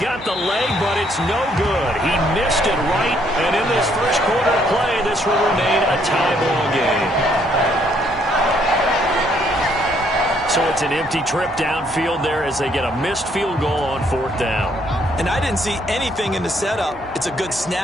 the leg, but it's no good. He missed it right, and in this first quarter of play, this will remain a tie ball game. So it's an empty trip downfield there as they get a missed field goal on 4th down. And I didn't see anything in the setup. It's a good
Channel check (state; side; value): noise; right; hum, 22 dB below the sound